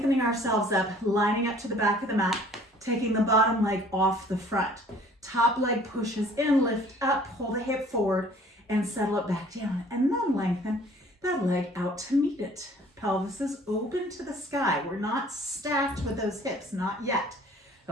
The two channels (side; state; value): both; normal; correlation 0.53